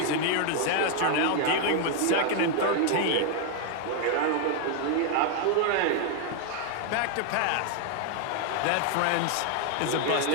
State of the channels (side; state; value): both; different; correlation 0.00